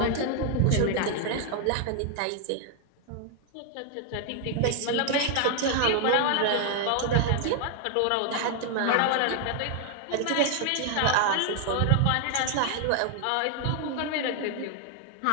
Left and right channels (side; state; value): both; different; correlation 0.00